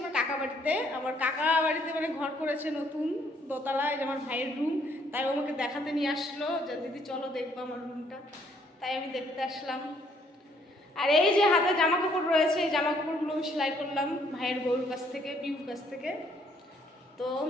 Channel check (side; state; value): both; normal; correlation 0.66